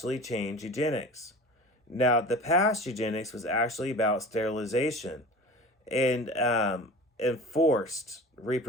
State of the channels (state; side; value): normal; both; correlation 0.37